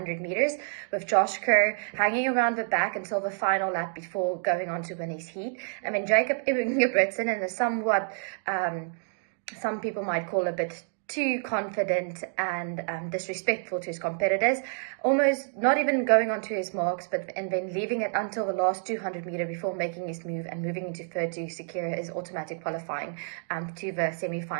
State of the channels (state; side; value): silent; left; 59 dB below the other